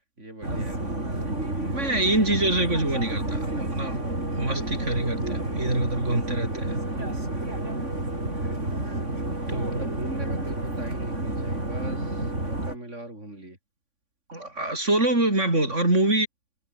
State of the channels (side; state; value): left; late; 3.5 ms